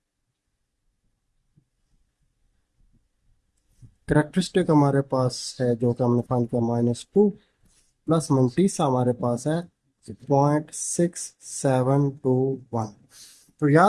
Characteristic हमारे पास है जो कि हमने फाइंड किया -2, प्लस मंटीसा हमारे पास है 0.6721। तो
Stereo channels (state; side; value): identical; both; correlation 1.00